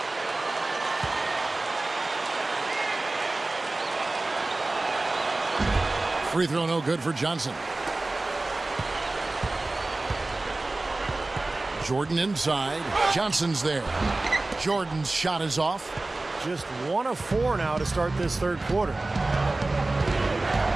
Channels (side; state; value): left; quieter; 3.1 dB